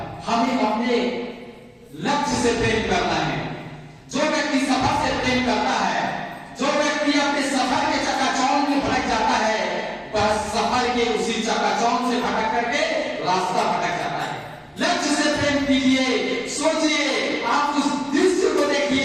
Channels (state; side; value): identical; both; correlation 1.00